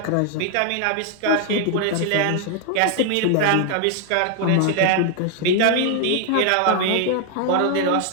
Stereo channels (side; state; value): both; different; correlation 0.00